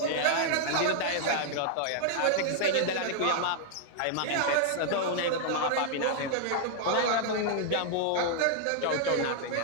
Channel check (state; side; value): different; both; correlation 0.00